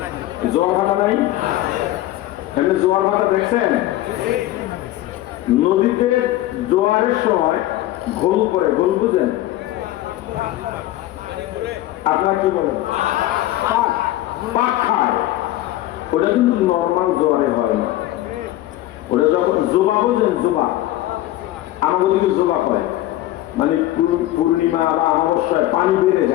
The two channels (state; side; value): quieter; right; 15.2 dB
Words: জোয়ার ভাটা নাই? এমনি জোয়ার ভাটা দেখছেন? নদীতে জোয়ারের সময় ঘোল পড়ে, ঘোল বুঝেন? আপনারা কি বলেন? পাক খায়। ওটা কিন্তু নর্মাল জ্বরে হয় না, ওটা যখন জোবা, বোঝেন জোবা, আমাদের দিকে জোবা হয়, মানে পূর্ণিমা বা অমাবস্যায় পানি বেড়ে